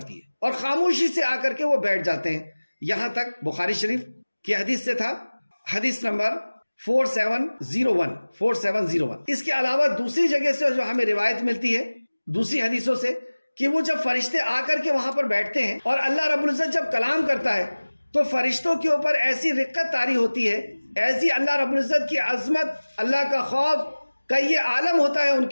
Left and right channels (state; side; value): inverted; both; correlation -1.00